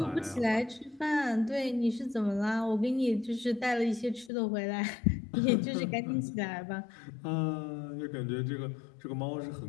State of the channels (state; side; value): drops out; right; at 4.3 s